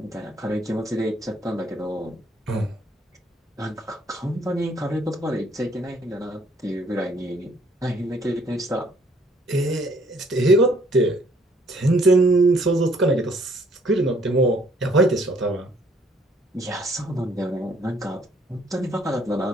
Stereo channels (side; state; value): both; normal; correlation 0.64